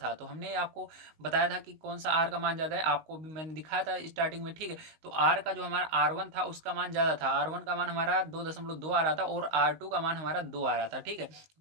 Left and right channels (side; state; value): left; late; 19 ms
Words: तो हमने आपको बताया था कि कौन सा आर का मान ज्यादा है, आपको भी मैंने दिखाया था स्टार्टिंग में, ठीक है। तो आर का जो हमारा R1 था उसका मान ज्यादा था, R1 का मान हमारा 2.2 आ रहा था और R2 का मान हमारा 2 आ रहा था, ठीक है। तो